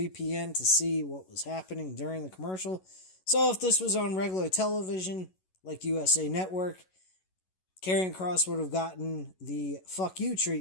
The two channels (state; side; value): late; right; 11 ms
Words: to see what was happening during the commercial. So if this was on regular television, like USA Network, Karrion Kross would have gotten the fuck you